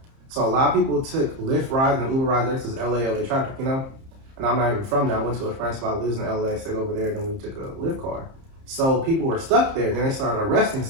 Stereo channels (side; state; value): left; late; 30 ms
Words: so a lot of people took Lyft rides and Uber rides there because LA traffic, And I'm not even from there. I went to a friend's spot, lives in LA, stayed over there, and then we took a Lyft car. So people were stuck there. Then they started arresting